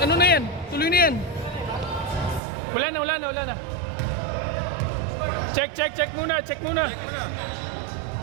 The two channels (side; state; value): left; drops out; at 2.4 s